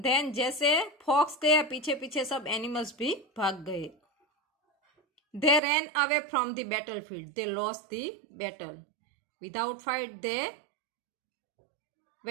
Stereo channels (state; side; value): drops out; left; at 5.6 s